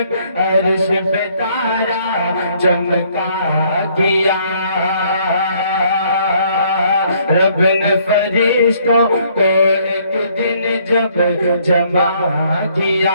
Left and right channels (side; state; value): both; inverted; correlation -0.65